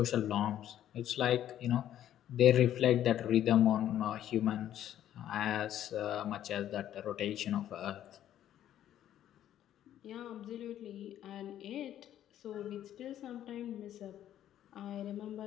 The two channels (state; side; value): quieter; right; 11.5 dB